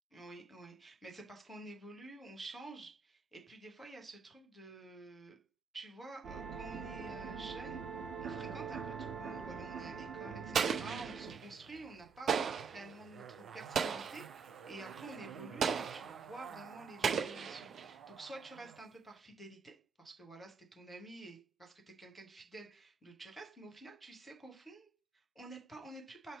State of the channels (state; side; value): quieter; left; 5.5 dB